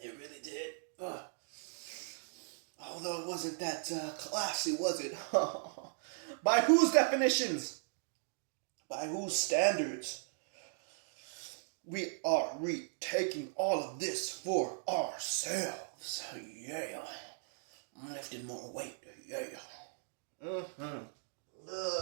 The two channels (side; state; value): left; silent; digital silence